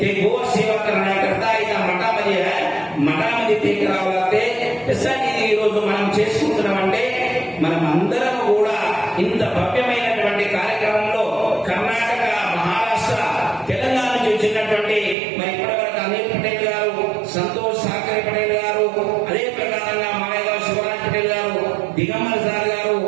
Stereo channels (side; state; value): left; drops out; at 15.2 s